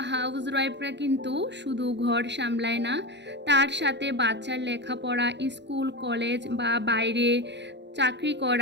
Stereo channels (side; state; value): left; late; 0.51 ms